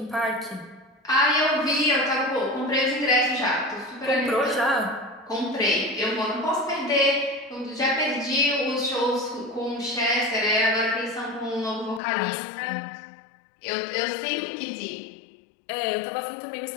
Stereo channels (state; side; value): drops out; right; at 12.0 s